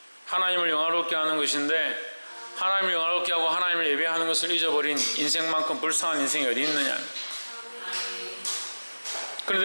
하나님을 영화롭게 하는 것인데, 하나님을 영화롭게 하고 하나님을 예배하는 것을 잊어버린 인생만큼 불쌍한 인생이 어디 있느냐.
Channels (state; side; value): inverted; both; correlation -1.00